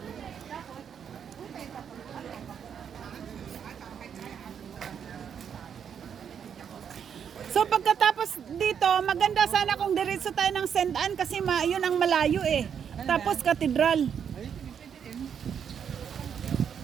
So pagkatapos dito, maganda sana kung diretso tayo ng St. Anne kasi yun ang malayo eh. Tapos katedral.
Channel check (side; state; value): left; quieter; 7.8 dB